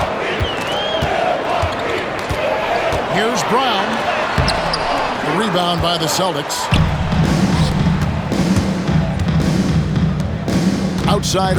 Here's Brown. The rebound by the Celtics. Outside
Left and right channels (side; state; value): both; identical; correlation 1.00